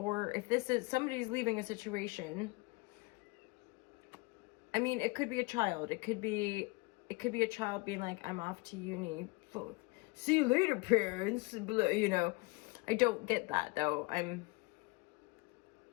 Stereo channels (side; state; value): right; quieter; 25.7 dB